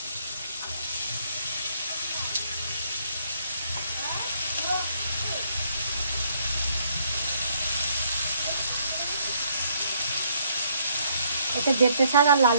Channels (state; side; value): inverted; both; correlation -0.69